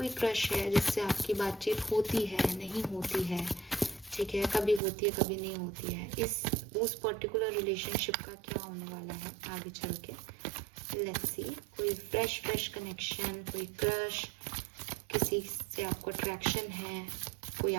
क्रश है जिससे आपकी बातचीत होती है, नहीं होती है, ठीक है, कभी होती है कभी नहीं होती है, उस पर्टिकुलर रिलेशनशिप का क्या होने वाला है आगे चल के। लेट्स सी, कोई फ्रेश कनेक्शन, कोई क्रश, किसी से आपको अट्रैक्शन है, कोई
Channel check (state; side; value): drops out; left; at 4.8 s